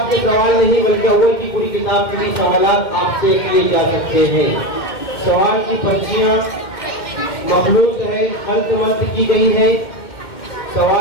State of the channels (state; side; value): late; right; 2.1 ms